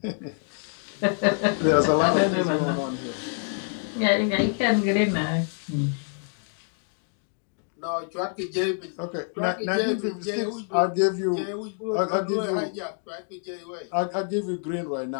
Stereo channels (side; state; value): right; silent; 56 dB below the other